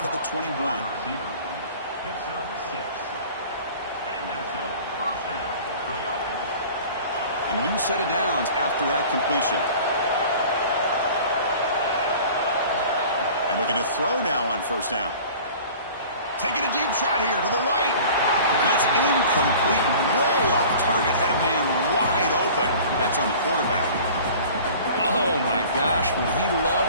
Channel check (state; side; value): inverted; both; correlation -0.44